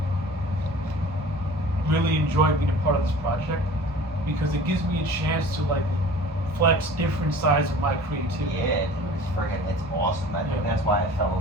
really enjoy being a part of this project, because it gives me a chance to like flex different sides of my creativity. Yeah, dude, it's awesome. I think that's why I fell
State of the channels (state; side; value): normal; both; correlation 0.44